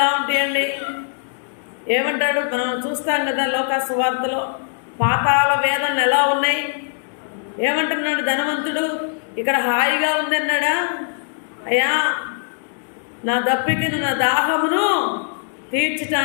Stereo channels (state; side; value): silent; right; digital silence